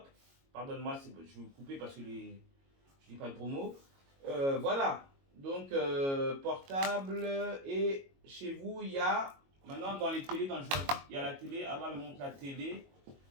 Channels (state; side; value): late; left; 22 ms